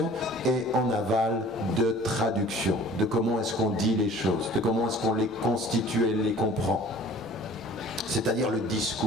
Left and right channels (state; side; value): normal; both; correlation 0.47